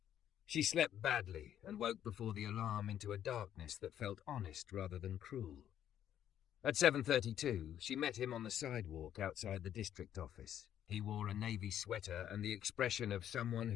She slept badly and woke before the alarm into a darkness that felt honest rather than cruel. At 7:32, she met him on the sidewalk outside the district office. He wore a navy sweater and the expression of someone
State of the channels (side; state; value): right; quieter; 10.5 dB